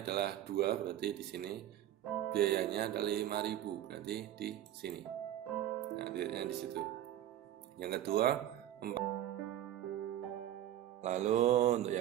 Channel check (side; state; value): left; quieter; 12.4 dB